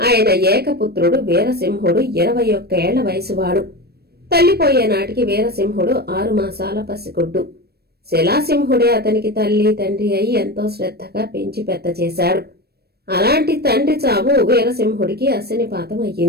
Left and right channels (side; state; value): left; late; 0.47 ms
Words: ఏకపుత్రుడు వీరసింహుడు 21 ఏళ్ల వయసువాడు. తల్లిపోయే నాటికి వీరసింహుడు 6 మాసాల పసిగుడ్డు. శిలాసింహుడే అతనికి తల్లి తండ్రి అయి ఎంతో శ్రద్ధగా పెంచి పెద్ద చేశాడు. అలాంటి తండ్రి చావు వీరసింహుడికి అశనిపాతం